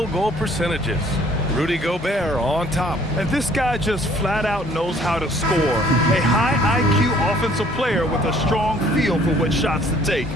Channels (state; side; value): normal; both; correlation 0.58